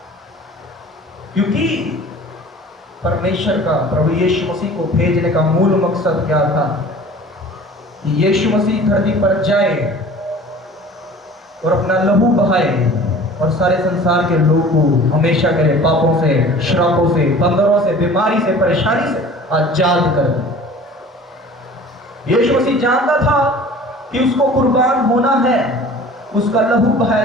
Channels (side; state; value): both; normal; correlation 0.44